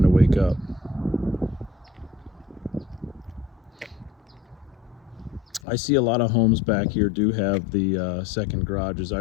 to wake up. I see a lot of homes back here do have the second garages.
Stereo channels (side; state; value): right; drops out; at 5.6 s